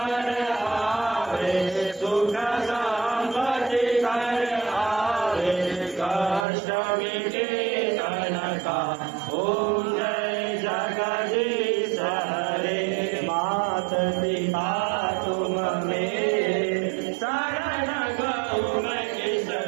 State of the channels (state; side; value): drops out; left; at 6.5 s